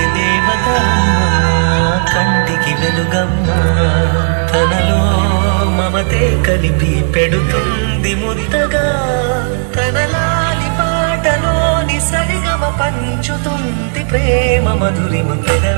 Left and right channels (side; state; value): left; silent; 72 dB below the other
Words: దేవత అమ్మా కంటికి వెలుగమ్మా తనలో మమతే కలిపి పెడుతుంది మురితగా తనలాలి పాటలోని సరిగమ పంచుతుంది ప్రేమ మధురిమ